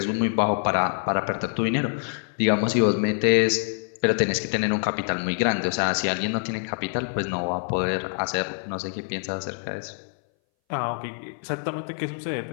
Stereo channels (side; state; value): right; silent; 60 dB below the other